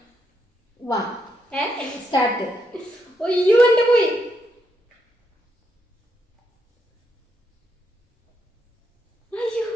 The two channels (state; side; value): normal; both; correlation 0.79